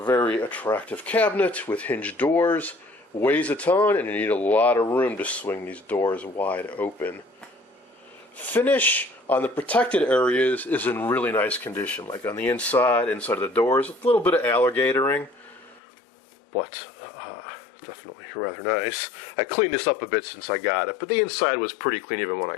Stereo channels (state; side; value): drops out; right; at 15.8 s